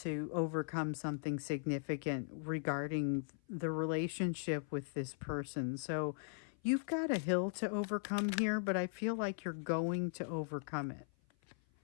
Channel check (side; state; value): right; silent; 52 dB below the other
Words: overcome something significant regarding the relationship with this person. So you've got a hill to overcome here, but I feel like you're going to overcome it.